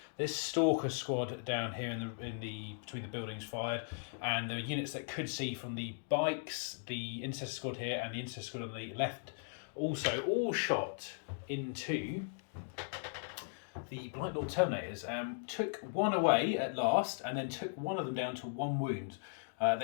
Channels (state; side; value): silent; right; digital silence